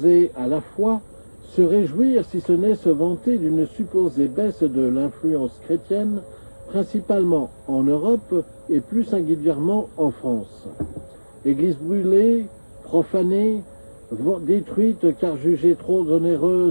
à la foi se réjouir, si ce n'est se vanter, d'une supposée baisse de l'influence chrétienne, principalement en Europe et plus singulièrement en France. Églises brûlées, profanées, détruites car jugées trop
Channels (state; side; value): inverted; both; correlation -1.00